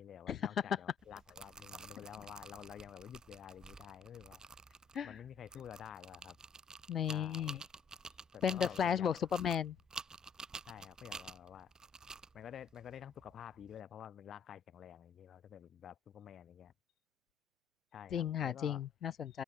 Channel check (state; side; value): quieter; right; 7.0 dB